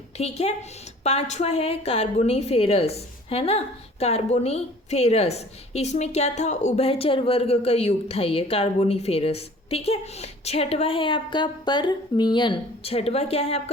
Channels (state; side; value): normal; both; correlation 0.50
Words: ठीक है, 5वां है कार्बोनीफेरस, है ना, कार्बोनीफेरस। इसमें क्या था, उभयचर वर्ग का युग था ये कार्बोनीफेरस। ठीक है, 6वां है आपका परमियन। 6वां क्या है